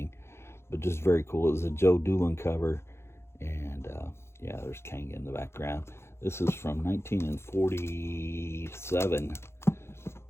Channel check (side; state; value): right; late; 0.12 ms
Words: But just very cool. It was a Joe Doolin cover. And yeah, there's Kang in the background. This is from 1947.